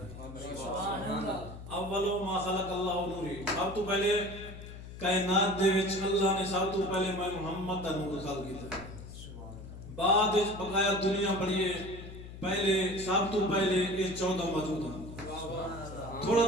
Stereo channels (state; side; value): noise; left; hum, 13 dB below the sound